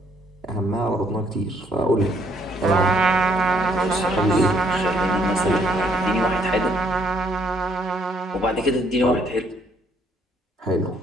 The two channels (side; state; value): both; normal; correlation 0.68